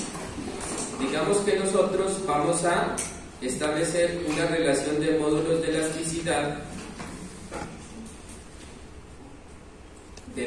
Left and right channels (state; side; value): identical; both; correlation 1.00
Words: digamos que nosotros vamos a establecer una relación de módulos de elasticidad